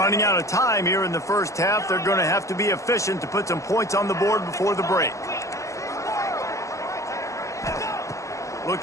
out of time here in the first half. They're going to have to be efficient to put some points on the board before the break.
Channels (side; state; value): right; late; 0.15 ms